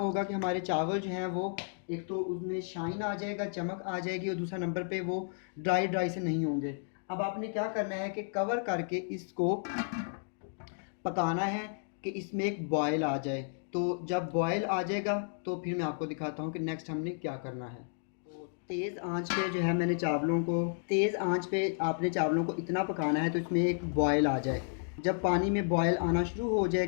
कि हमारे चावल जो हैं वो एक तो उसमें शाइन आ जाएगा, चमक आ जाएगी और दूसरा नंबर पे वो ड्राई ड्राई से नहीं होंगे। अब आपने क्या करना है कि कवर करके इसको पकाना है कि इसमें एक बॉयल आ जाए। तो जब बॉयल आ जाएगा तो फिर मैं आपको दिखाता हूँ कि नेक्स्ट हमने क्या करना है। तो तेज़ आंच पे जो है मैंने चावलों को, तेज़ आंच पे आपने चावलों को इतना पकाना है तो इसमें एक बॉयल आ जाए। जब पानी में बॉयल आना शुरू हो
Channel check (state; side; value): silent; right; digital silence